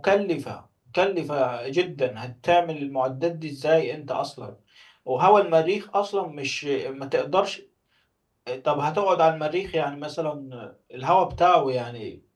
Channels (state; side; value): identical; both; correlation 1.00